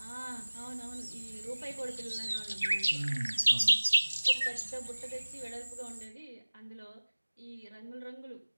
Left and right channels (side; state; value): both; inverted; correlation -1.00